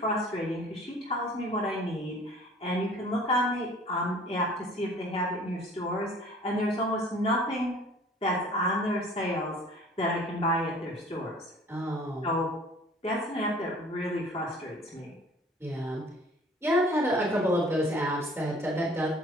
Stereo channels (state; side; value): normal; both; correlation 0.50